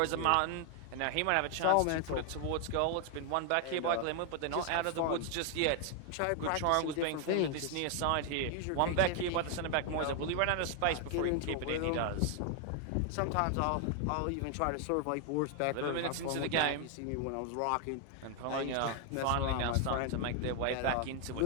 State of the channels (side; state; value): both; different; correlation 0.00